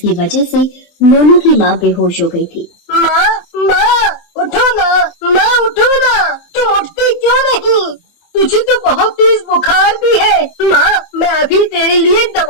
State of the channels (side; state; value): right; late; 24 ms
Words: वजह से मोनू की माँ बेहोश हो गई थी। माँ, उठो ना, माँ उठो ना, तुम उठती क्यों नहीं? तुझे तो बहुत तेज बुखार भी है। माँ, मैं अभी तेरे लिए